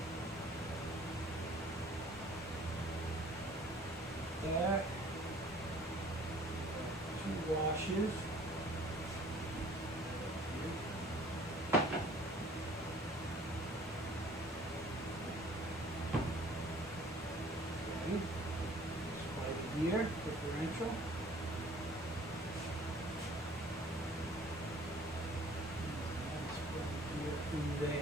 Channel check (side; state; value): both; normal; correlation 0.52